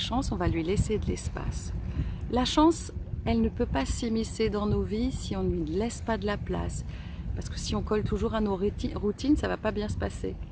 on va lui laisser de l'espace. La chance, elle ne peut pas s'immiscer dans nos vies si on ne lui laisse pas de la place. Parce que si on colle toujours à nos routines, ça ne va pas bien se passer.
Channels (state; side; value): identical; both; correlation 1.00